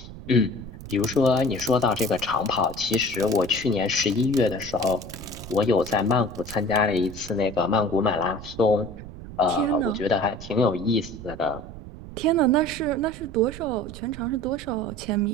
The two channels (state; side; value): noise; right; rumble, 13 dB below the sound